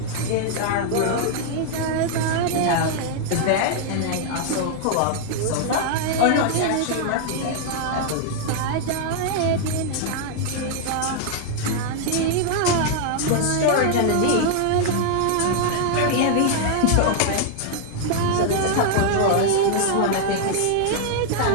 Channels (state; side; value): different; both; correlation 0.00